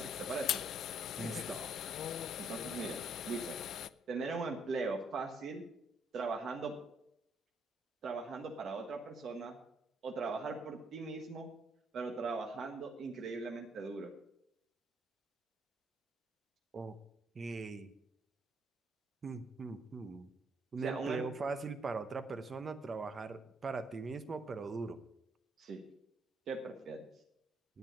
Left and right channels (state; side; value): normal; both; correlation 0.70